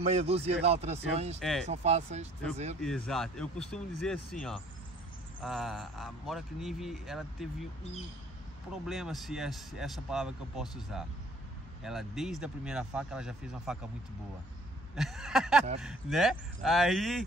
dúzia de alterações que são fáceis de fazer. Exato, eu costumo dizer assim, ó, a Mora Kniv, ela teve um problema, se é essa palavra que eu posso usar. Ela, desde a primeira faca, ela já fez uma faca muito boa. Né?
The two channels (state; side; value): normal; both; correlation 0.55